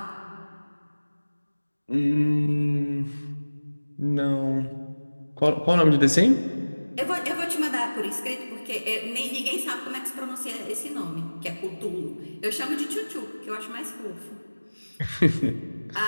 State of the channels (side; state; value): both; inverted; correlation -1.00